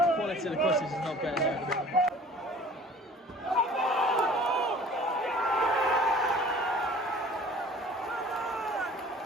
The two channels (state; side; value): normal; both; correlation 0.48